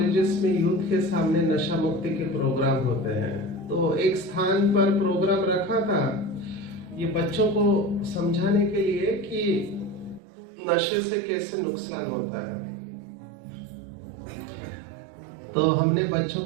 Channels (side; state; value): left; drops out; at 10.2 s